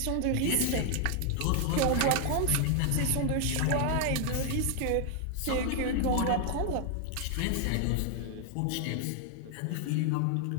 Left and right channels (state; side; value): different; both; correlation 0.00